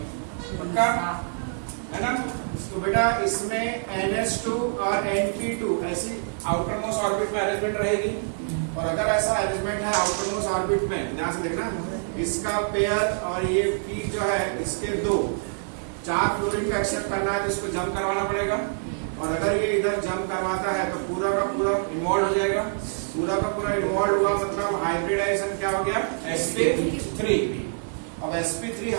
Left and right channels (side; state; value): left; silent; digital silence